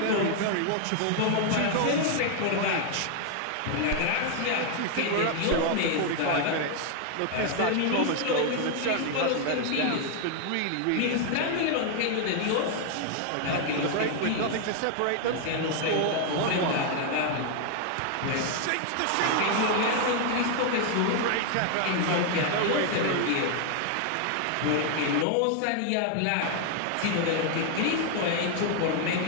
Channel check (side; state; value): both; different; correlation 0.00